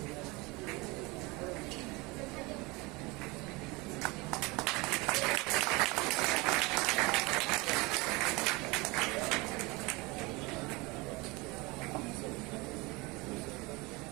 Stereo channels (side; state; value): left; quieter; 24.6 dB